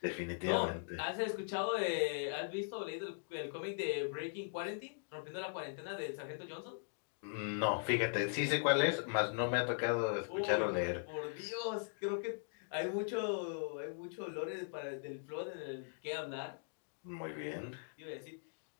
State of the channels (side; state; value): right; silent; digital silence